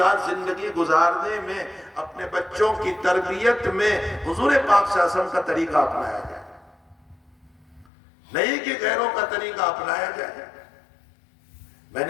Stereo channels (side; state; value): right; drops out; at 7.9 s